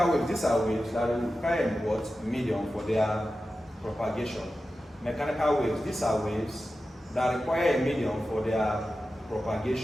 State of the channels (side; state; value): both; normal; correlation 0.93